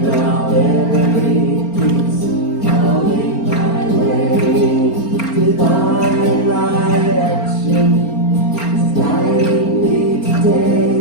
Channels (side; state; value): right; late; 4.4 ms